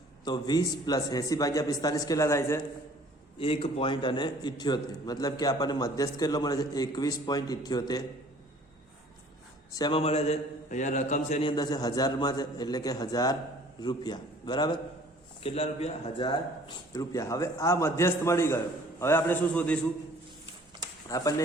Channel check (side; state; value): both; normal; correlation 0.53